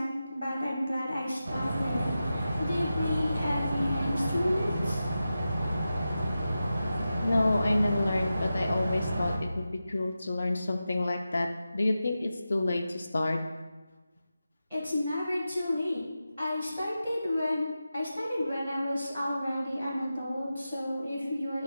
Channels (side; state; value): both; inverted; correlation -0.92